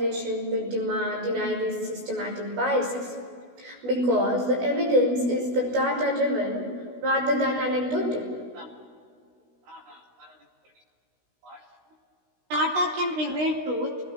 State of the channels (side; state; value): left; late; 16 ms